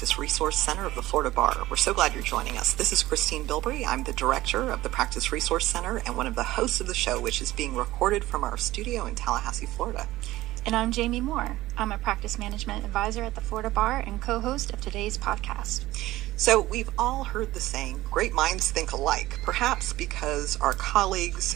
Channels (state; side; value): quieter; left; 16.7 dB